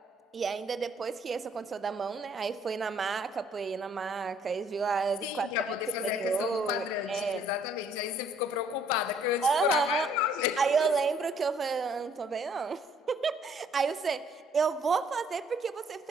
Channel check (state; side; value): normal; both; correlation 0.63